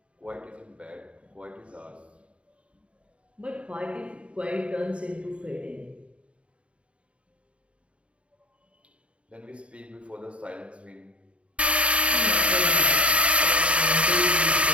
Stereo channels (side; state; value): left; late; 0.061 ms